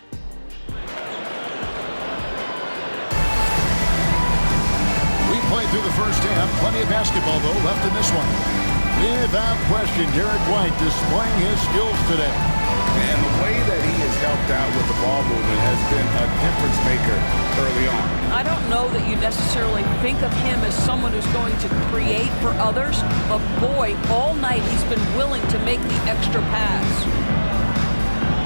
Through the first half, plenty of basketball, though, left in this one. Without question, Derek White displaying his skills today. And the way that he has helped out with the ball movement has been a difference maker early on. I don't know that you necessarily think of him as someone who's going to create for others, but boy, all night he's been willing to make the extra pass.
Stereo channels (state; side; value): inverted; both; correlation -1.00